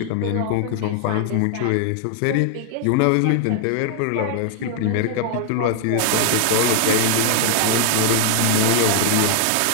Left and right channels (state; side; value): different; both; correlation 0.00